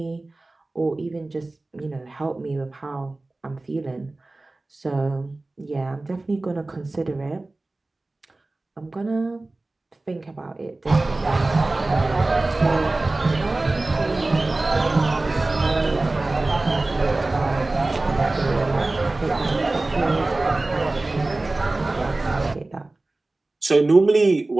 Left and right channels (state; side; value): quieter; left; 3.0 dB